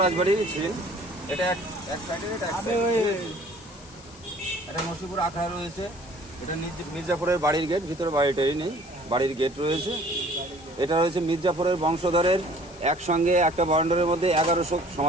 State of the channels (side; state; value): left; noise; hiss, 21 dB below the sound